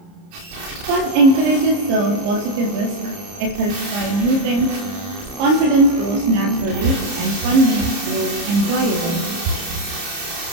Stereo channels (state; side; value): late; left; 30 ms